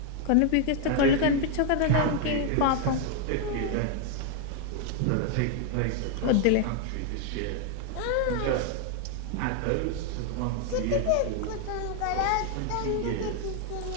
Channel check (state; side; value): different; both; correlation 0.00